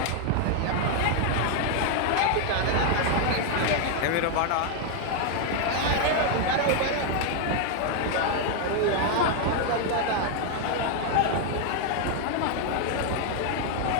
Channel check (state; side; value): different; both; correlation 0.01